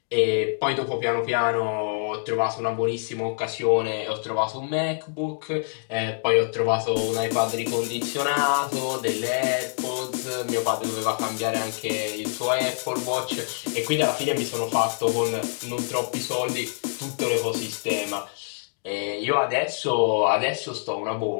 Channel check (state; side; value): silent; right; 61 dB below the other